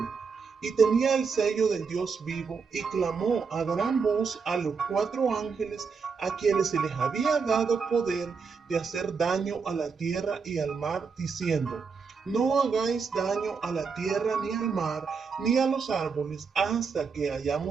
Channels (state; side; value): quieter; left; 5.4 dB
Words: y tenía el sello del Dios vivo, y clamó a gran voz a los 4 ángeles a quienes se les había dado poder de hacer daño a la tierra y al mar, diciendo: no hagáis daño a la tierra ni al mar ni a los árboles hasta que